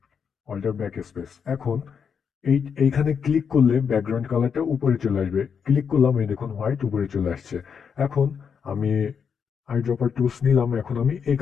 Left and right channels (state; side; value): quieter; right; 6.8 dB